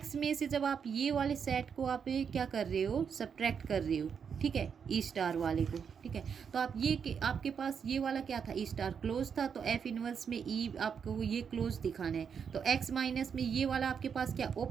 में से जब आप ये वाले सेट को आप क्या कर रहे हो, सब्ट्रैक्ट कर रहे हो, ठीक है, ई स्टार वाले को, ठीक है। तो आप ये आपके पास ये वाला क्या था, ई स्टार क्लोज था, तो एफ इनवर्स में ई आपको ये क्लोज दिखाना है। तो एक्स माइनस में ये वाला आपके पास क्या,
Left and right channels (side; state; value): left; quieter; 6.9 dB